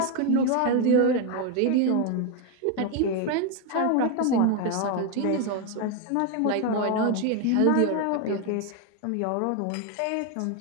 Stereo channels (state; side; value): different; both; correlation 0.01